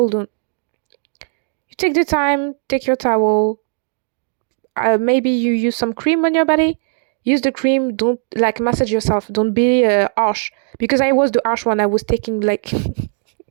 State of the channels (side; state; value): left; silent; 67 dB below the other